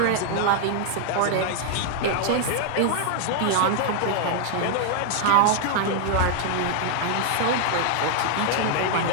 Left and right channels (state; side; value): different; both; correlation 0.00